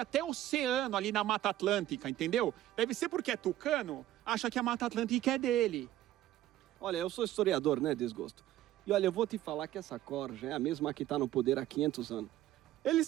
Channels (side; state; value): left; quieter; 13.8 dB